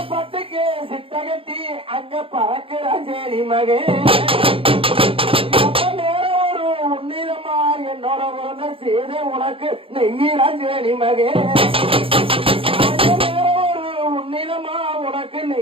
பட்டுக்கு சிட்டகட்டி அங்க பறக்கிற சேரி மகே நேரம் ஒரு உன்னிதமா என்னோட உறந்த செய்த உனக்கு நெய்யிறான் சேரி மகே நேரம் ஒரு உன்னிதமா உனக்கு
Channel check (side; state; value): left; late; 0.27 ms